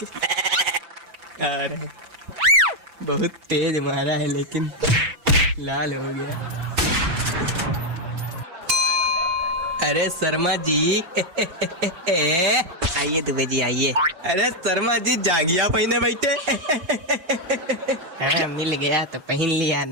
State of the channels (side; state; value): left; late; 6.0 ms